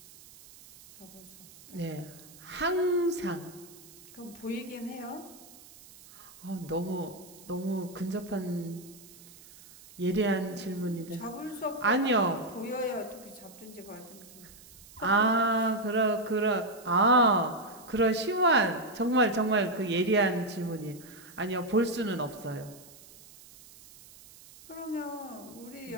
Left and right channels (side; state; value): right; noise; hiss, 21 dB below the sound